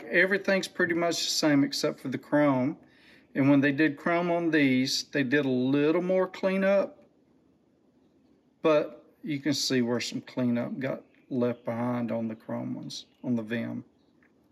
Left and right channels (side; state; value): both; identical; correlation 1.00